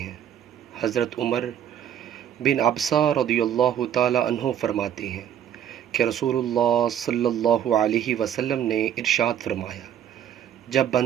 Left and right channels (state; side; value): quieter; left; 9.8 dB